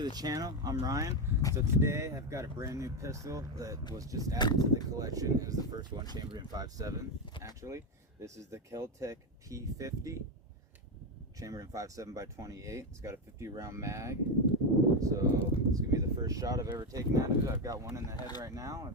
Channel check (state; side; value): normal; both; correlation 0.10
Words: the channel. I'm Ryan. So today I've got a brand new pistol that was just added to the collection. It was the first one chambered in 5.7 actually. This is the Kel-Tec p50 chambered in 5.7 by 28. It's got a 50 round mag. So it's gonna be the first shot I've ever taken out of it. I've got one in the head right now.